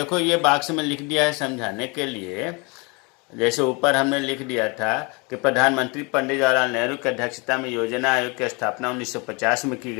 ये बॉक्स में लिख दिया है समझाने के लिए। जैसे ऊपर हमने लिख दिया था कि प्रधानमंत्री पंडित जवाहरलाल नेहरू की अध्यक्षता में योजना आयोग की स्थापना 1950 में की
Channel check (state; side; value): quieter; right; 29.5 dB